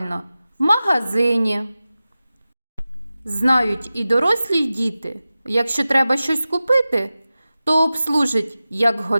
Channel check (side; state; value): both; inverted; correlation -0.95